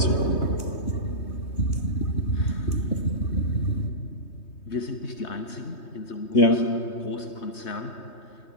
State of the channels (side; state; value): right; late; 3.2 ms